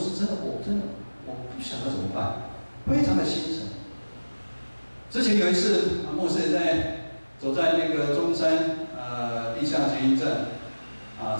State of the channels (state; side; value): inverted; both; correlation -1.00